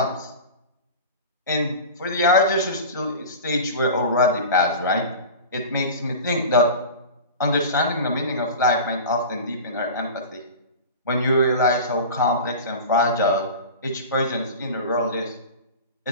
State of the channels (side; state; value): both; inverted; correlation -0.33